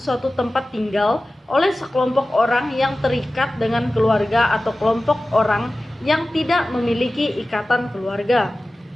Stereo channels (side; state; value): both; normal; correlation 0.96